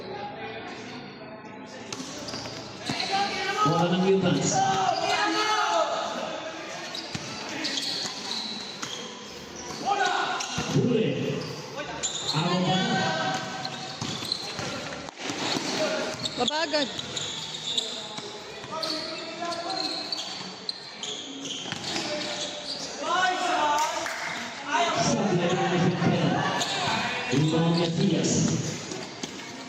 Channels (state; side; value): identical; both; correlation 1.00